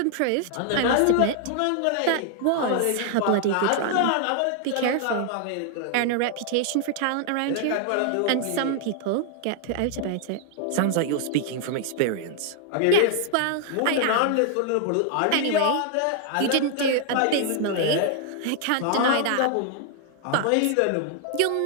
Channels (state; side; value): different; both; correlation 0.00